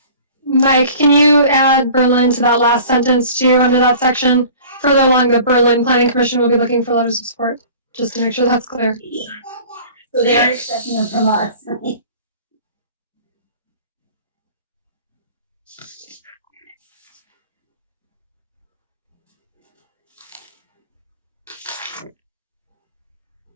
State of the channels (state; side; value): inverted; both; correlation -0.45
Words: Mike, can you add Berlin to that last sentence too, under that section? Further along, the Berlin Planning Commission will be looking for letters of support, just to make sure that's clear. So they are expecting them from us.